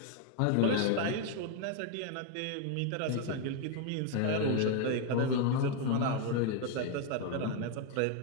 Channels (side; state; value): both; different; correlation 0.01